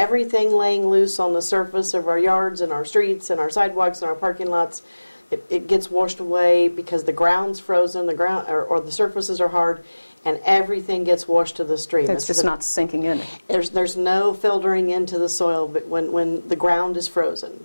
laying loose on the surface of our yards and our streets and our sidewalks and our parking lots, it gets washed away because the ground's frozen, the ground or the surfaces are hard, and everything gets washed to the stream. It's just not sinking in. There's no filtering into the soil but when the ground is frozen.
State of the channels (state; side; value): inverted; both; correlation -1.00